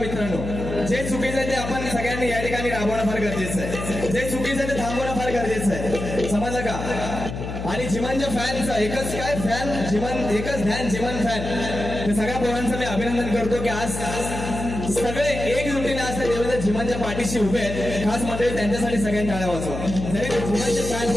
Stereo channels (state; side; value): noise; left; hum, 6 dB below the sound